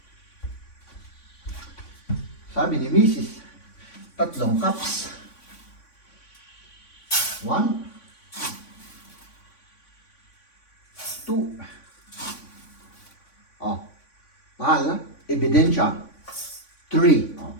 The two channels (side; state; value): right; late; 3.5 ms